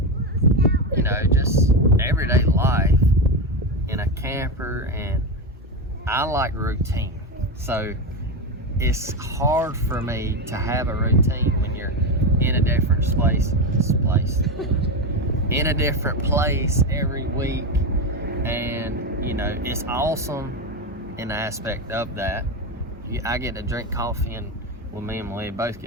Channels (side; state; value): both; normal; correlation 0.14